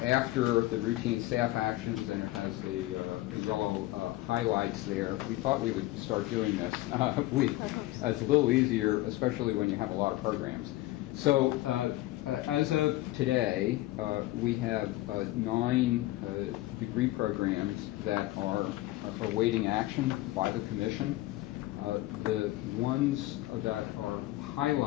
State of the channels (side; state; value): right; quieter; 17.4 dB